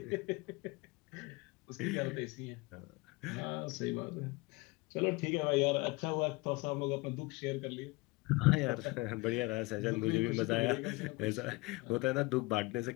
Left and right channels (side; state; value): right; quieter; 24.1 dB